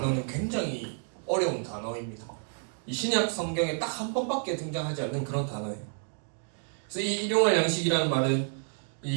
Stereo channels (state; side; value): silent; left; 58 dB below the other